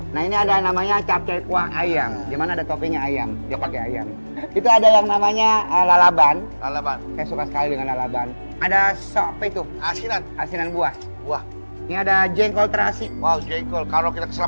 Nah ini ada namanya capcay kuah ayam. Di mana ada toppingnya ayam. Dia pakai ayam. Itu ada yang namanya lalaban. Lalaban. Saya suka sekali dengan lalaban. Ada sop itu, Asinan. asinan buah. Wah, Ini ada jengkol terasi. wow, jengkol. Kalau kita kesel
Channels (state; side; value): inverted; both; correlation -1.00